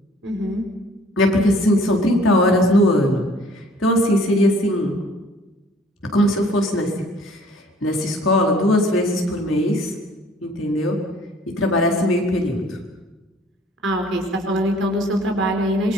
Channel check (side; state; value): both; normal; correlation 0.55